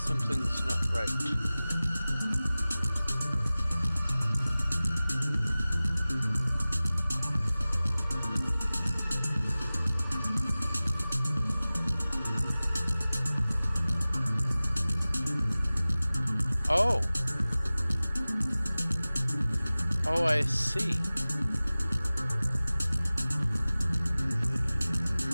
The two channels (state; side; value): inverted; both; correlation -0.98